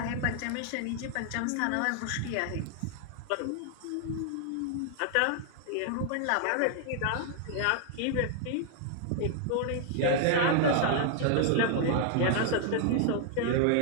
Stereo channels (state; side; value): different; both; correlation 0.00